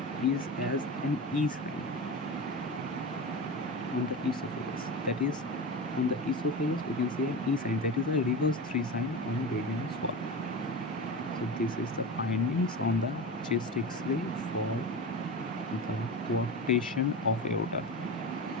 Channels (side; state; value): both; normal; correlation 0.25